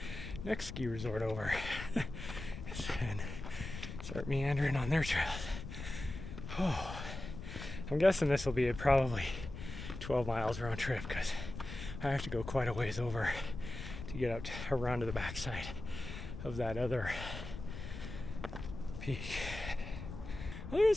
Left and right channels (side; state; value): left; noise; rumble, 9 dB below the sound